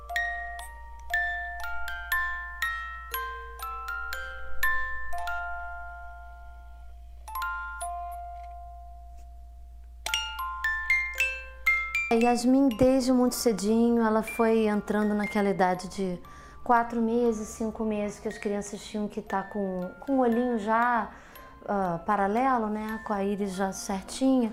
Yasmin, desde muito cedinho, ela foi entrando naquela idade de 4 meses, 5 meses, que as crianças tinham que estar com o olhinho já paralelo, né, com a íris já certinha,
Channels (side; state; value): both; identical; correlation 1.00